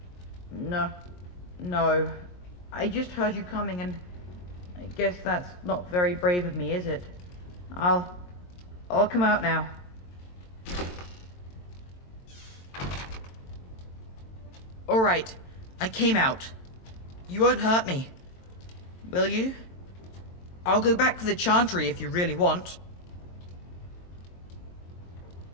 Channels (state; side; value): late; right; 22 ms